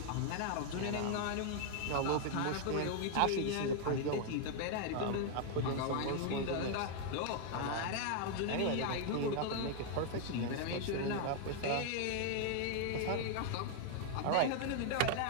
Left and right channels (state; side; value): different; both; correlation 0.00